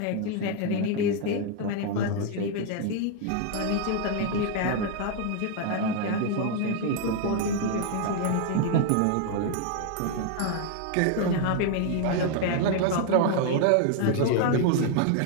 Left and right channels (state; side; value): different; both; correlation 0.00